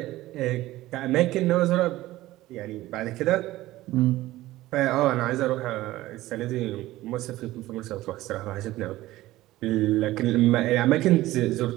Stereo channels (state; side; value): quieter; left; 16.7 dB